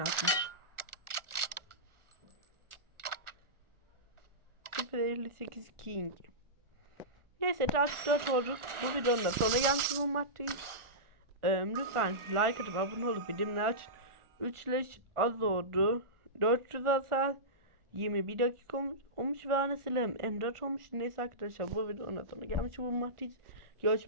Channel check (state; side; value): late; left; 1.4 ms